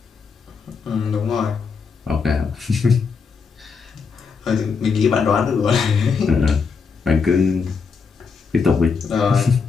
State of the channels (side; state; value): right; quieter; 5.3 dB